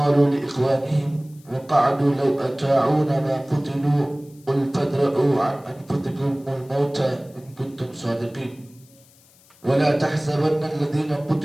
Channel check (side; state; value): left; noise; hiss, 28 dB below the sound